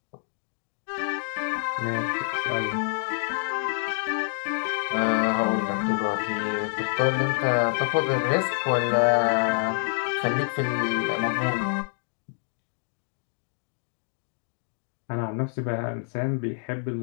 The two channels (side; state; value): right; silent; 60 dB below the other